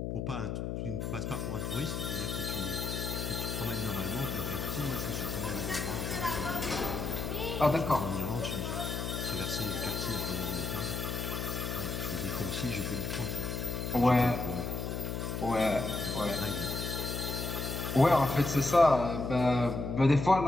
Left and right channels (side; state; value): left; noise; hum, 3 dB below the sound